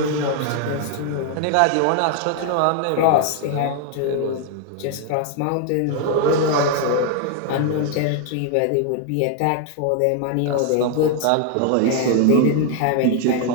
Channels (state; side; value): different; both; correlation 0.00